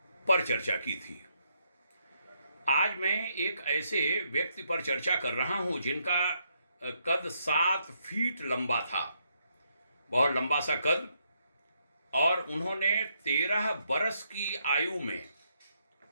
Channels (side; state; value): both; inverted; correlation -0.77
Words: पर चर्चा की थी। आज मैं एक ऐसे व्यक्ति पर चर्चा कर रहा हूं जिनका कद 7 फीट लंबा था, बहुत लंबा सा कद, और उन्होंने 13 बरस की आयु में